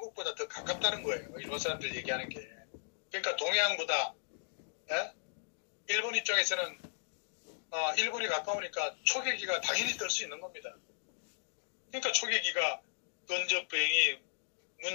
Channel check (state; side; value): silent; right; digital silence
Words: 더 가깝다는 거예요. 일본 사람들 얘기하는 게. 그러니까 동해안보다 일본 입장에서는 일본이 가까우니까 초계기가 당연히 뜰 수 있는 겁니다. 그러니까 초계기가 근접 비행이